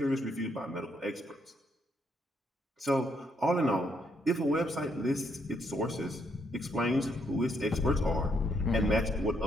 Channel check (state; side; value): normal; both; correlation 0.74